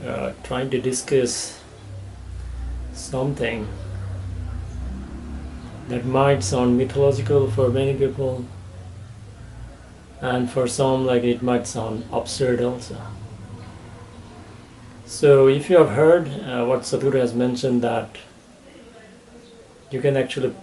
trying to discuss something that might sound mythological for many people, and for some like it might sound absurd also. So if you have heard what Sadhguru has mentioned, that you can actually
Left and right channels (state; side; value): identical; both; correlation 1.00